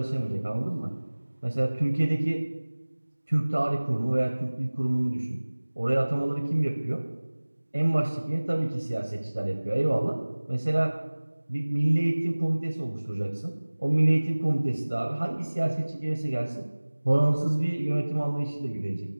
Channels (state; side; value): inverted; both; correlation -1.00